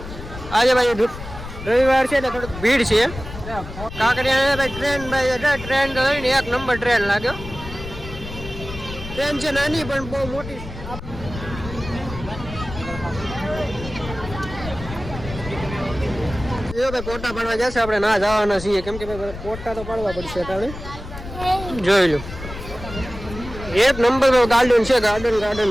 આજે ભાઈ રવિવાર છે એટલે થોડીક ભીડ છે. કાંકરિયા ભાઈ ટ્રેન તો ને એક નંબર ટ્રેન લાગ્યો. ટ્રેન છે નાની પણ બહુ મોટી. ભાઈ ફોટા પાડવા જશે આપણે ના જવાના છીએ કેમ કે ભાઈ ફોટા તો પાડવા પડશે. આપણે જોઈ લો એક નંબર ગાર્ડન છે. ગાર્ડન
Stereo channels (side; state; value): left; noise; rumble, 11 dB below the sound